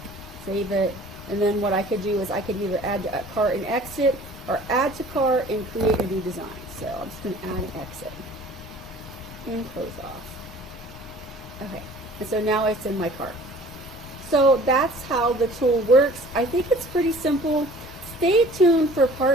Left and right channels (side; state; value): both; normal; correlation 0.49